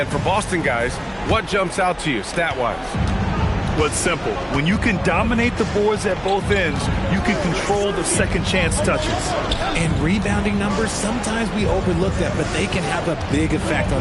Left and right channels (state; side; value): identical; both; correlation 1.00